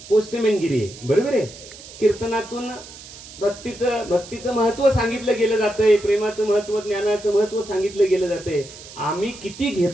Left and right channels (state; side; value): noise; right; hiss, 17 dB below the sound